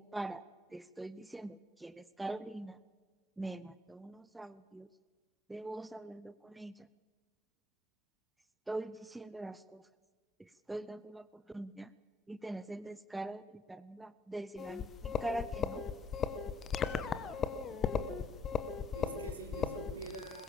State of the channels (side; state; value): right; quieter; 3.0 dB